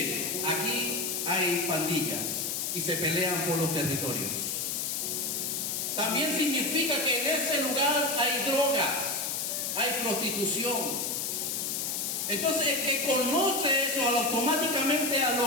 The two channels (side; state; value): left; noise; hiss, 1 dB below the sound